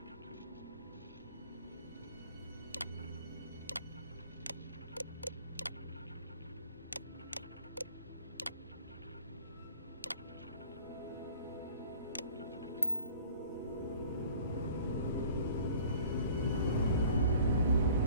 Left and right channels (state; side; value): inverted; both; correlation -0.49